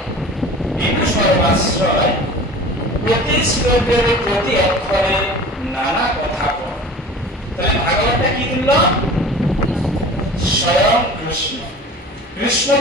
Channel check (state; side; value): normal; both; correlation 0.40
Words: বিদু সর্বাশ্রয় শ্লোকের প্রতি অক্ষরে নানা কথা বল। তাহলে ভাগবতটা কি তুল্য? স্বয়ং কৃষ্ণ। কৃষ্ণ